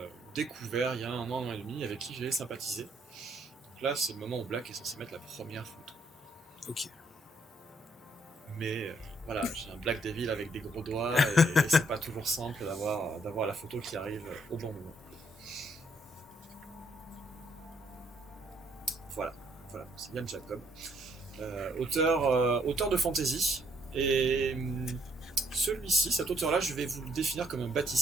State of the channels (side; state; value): both; normal; correlation 0.70